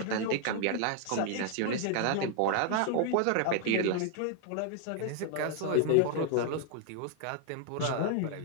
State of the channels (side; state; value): both; different; correlation 0.00